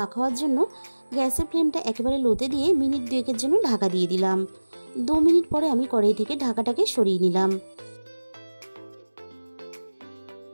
হওয়ার জন্য গ্যাসের ফ্লেমটা একেবারে লোতে দিয়ে মিনিট 2 জন্য ঢাকা দিয়ে দিলাম। 2 মিনিট পরে আমি কড়াই থেকে ঢাকাটাকে সরিয়ে নিলাম।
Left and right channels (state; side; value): inverted; both; correlation -1.00